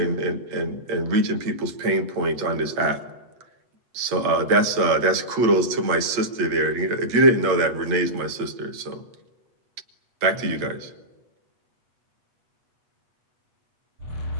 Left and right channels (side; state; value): left; late; 8.3 ms